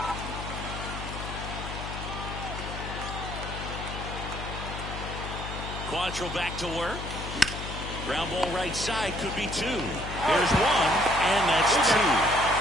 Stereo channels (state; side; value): noise; left; hum, 7 dB below the sound